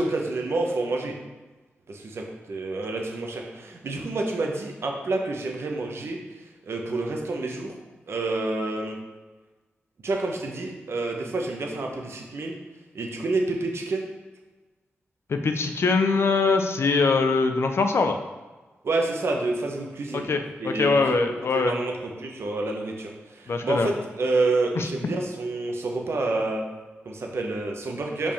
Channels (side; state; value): both; normal; correlation 0.76